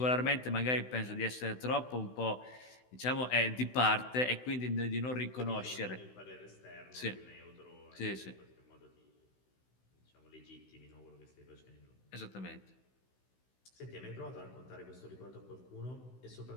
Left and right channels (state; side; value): late; right; 16 ms